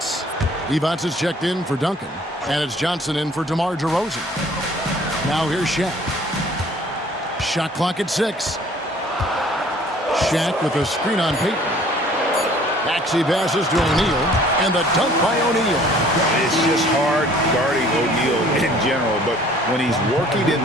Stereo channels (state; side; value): normal; both; correlation 0.54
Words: Evans is checked in for Duncan, and it's Johnson in for DeMar DeRozan. Now here's Shaq. Shot clock at 6. Shaq with a screen on Payton. Maxey passes to O'Neal, and the dunk by O'Neal. It's just hard guarding O'Neal in general, but when he's working in